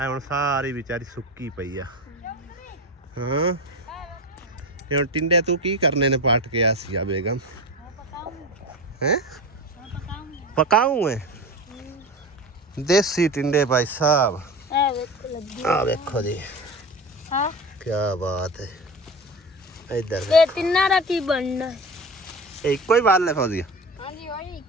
हुण सारी बेचारी सुक्की पई आ। हां ये हुण टिंडे तू की करने ने पाट के आसिया बेगम? हैं पकाऊं है देसी टिंडे भाई साहब। आ देखो जी हां क्या बात है। इधर ये तिन्ना दा की बनना है? एक कोई वाल है फौजिया? हां जी वही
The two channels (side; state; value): both; normal; correlation 0.28